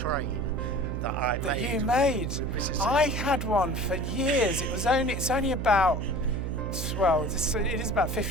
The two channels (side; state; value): right; noise; hum, 3 dB below the sound